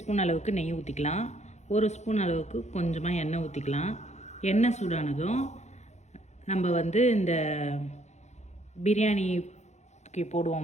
அளவுக்கு நெய் ஊற்றிக்கலாம். 1 ஸ்பூன் அளவுக்கு கொஞ்சமாக எண்ணெய் ஊற்றிக்கலாம். எண்ணெய் சூடானதும் நம்ம இந்த பிரியாணிக்கு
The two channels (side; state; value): right; late; 0.33 ms